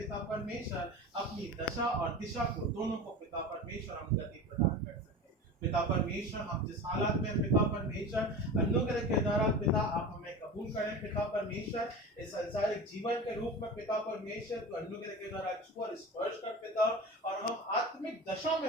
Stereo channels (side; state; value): both; normal; correlation 0.31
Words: परमेश्वर अपनी दशा और दिशा को दोनों को पिता परमेश्वर हम गति प्रदान कर सकें। पिता परमेश्वर हम जिस हालत में पिता परमेश्वर अनुग्रह के द्वारा पिता आप हमें कबूल करें पिता परमेश्वर, इस संसारिक जीवन के रूप में पिता परमेश्वर तो अनुग्रह के द्वारा छू और स्पर्श कर पिता, और हम आत्मिक दशा